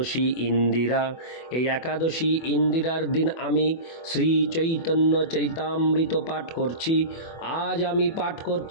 ইন্দিরা। এই একাদশী ইন্দিরার দিন আমি শ্রী চৈতন্য চরিতামৃত পাঠ করছি। আজ আমি পাঠ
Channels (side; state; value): right; late; 24 ms